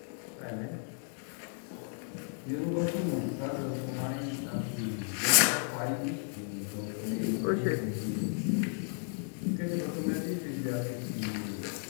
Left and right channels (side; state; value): right; silent; 55 dB below the other